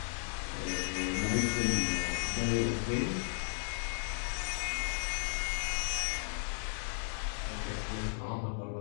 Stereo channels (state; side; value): silent; right; digital silence